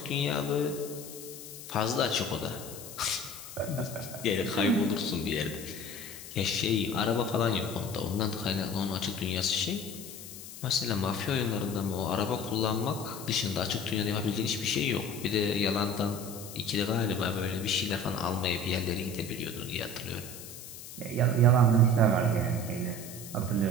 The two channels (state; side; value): noise; left; hiss, 13 dB below the sound